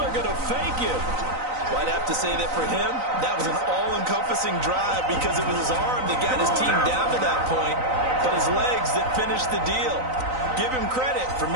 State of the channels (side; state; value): left; late; 3.9 ms